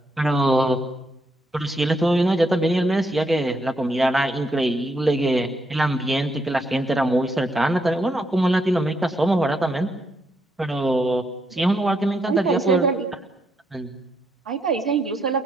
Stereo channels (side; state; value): both; normal; correlation 0.77